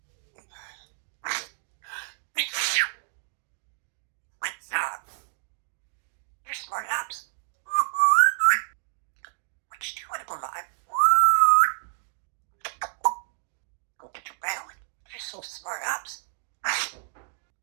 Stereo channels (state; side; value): silent; left; digital silence